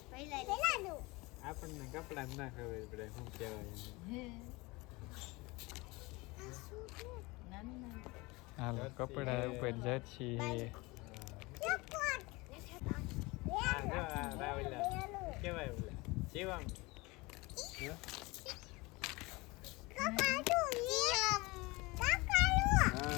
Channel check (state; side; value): quieter; right; 23.7 dB